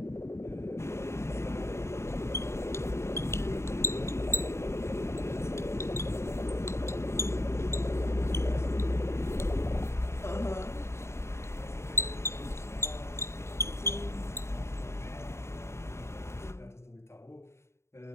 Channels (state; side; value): late; right; 0.13 ms